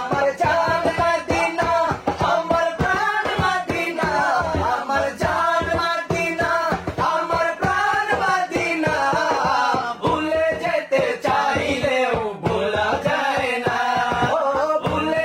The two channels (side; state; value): both; identical; correlation 1.00